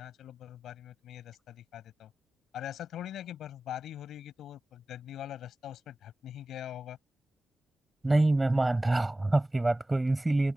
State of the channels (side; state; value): both; normal; correlation 0.96